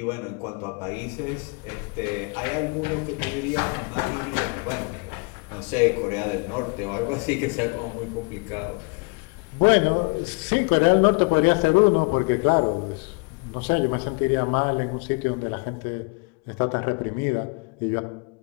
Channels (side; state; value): right; quieter; 32.2 dB